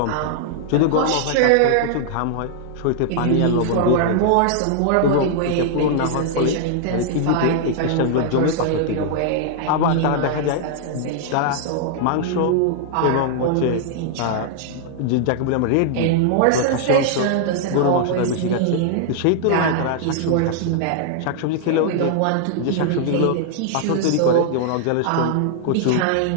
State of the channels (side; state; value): both; different; correlation -0.01